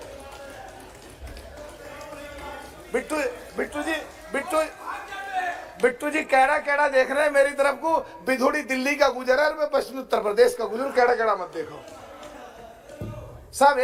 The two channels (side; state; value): both; identical; correlation 1.00